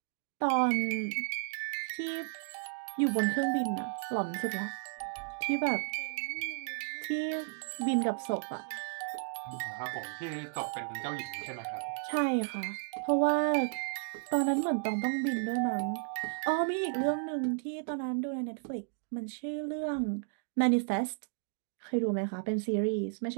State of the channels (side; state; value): left; silent; digital silence